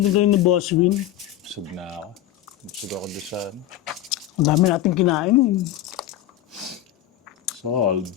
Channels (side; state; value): right; quieter; 12.4 dB